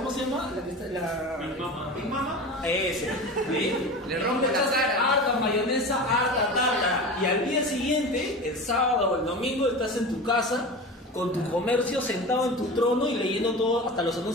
se llama? Big Mama. Ese. ¿Sí? Le rompe la cara. Harta mayonesa, harta tarta. Y al día siguiente, el sábado o el domingo, estás en tu casa con tu comercio sentado en tu trono y leyendo todo, hasta los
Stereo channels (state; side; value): normal; both; correlation 0.31